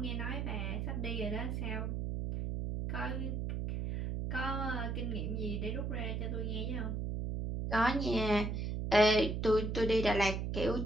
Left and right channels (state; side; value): noise; right; hum, 2 dB below the sound